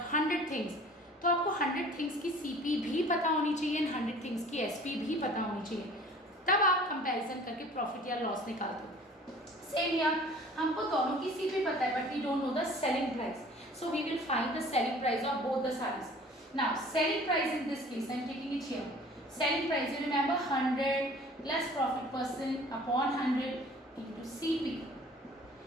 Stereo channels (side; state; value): both; normal; correlation 0.48